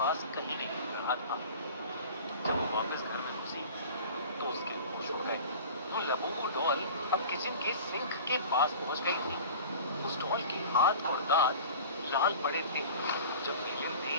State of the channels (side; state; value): both; inverted; correlation -0.39